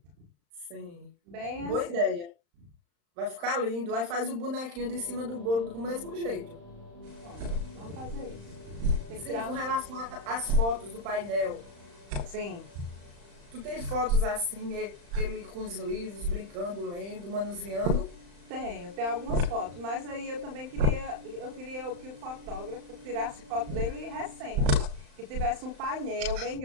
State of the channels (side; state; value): left; late; 35 ms